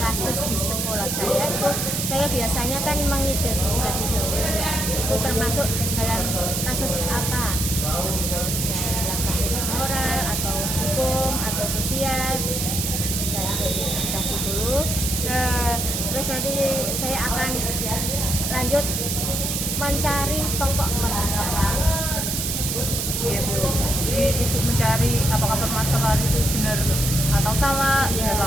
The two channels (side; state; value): right; noise; hiss, 1 dB below the sound